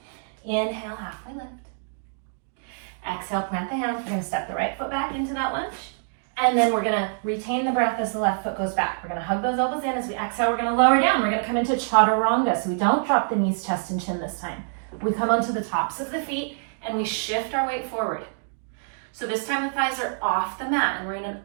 Inhale, halfway lift. Exhale, plant the hands. We're gonna step the right foot back into that lunge. And then we're gonna retain the breath as the left foot goes back. We're gonna hug those elbows in. As we exhale, we're gonna lower down. We're gonna come into chaturanga. So we don't drop the knees, chest, and chin this time. We come onto the tops of the feet and we shift our weight forward. So this time the thighs are off the mat and we're in an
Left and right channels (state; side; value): silent; left; digital silence